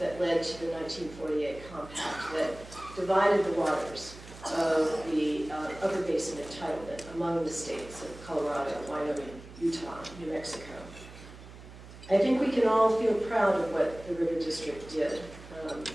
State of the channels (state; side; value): noise; right; hum, 17 dB below the sound